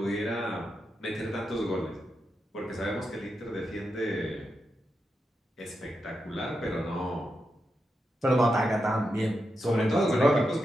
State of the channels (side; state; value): both; normal; correlation 0.86